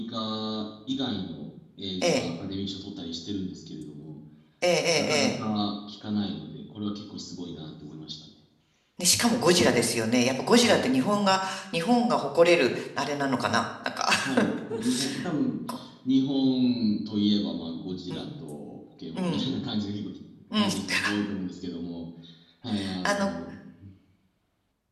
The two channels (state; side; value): identical; both; correlation 1.00